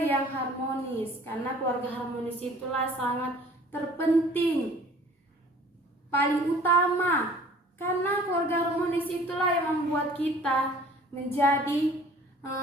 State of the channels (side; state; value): both; normal; correlation 0.51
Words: harmonis. Karena keluarga harmonis itulah sangat terpenting, paling utama. Karena keluarga harmonis itulah yang membuat kita menjadi